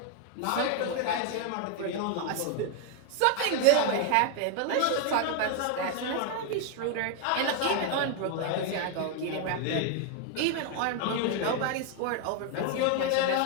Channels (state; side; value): different; both; correlation 0.00